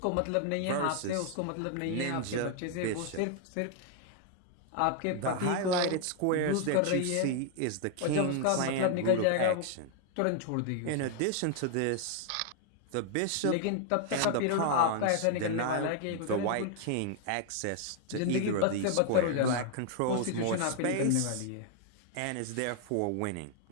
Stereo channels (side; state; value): both; different; correlation 0.00